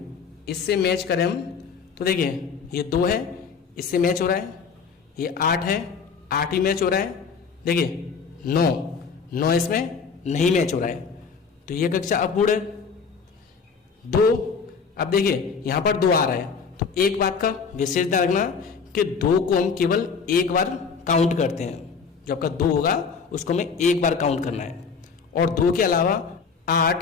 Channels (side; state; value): right; quieter; 5.6 dB